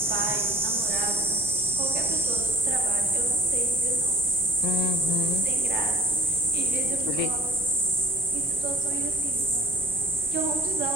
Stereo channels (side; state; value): both; normal; correlation 0.50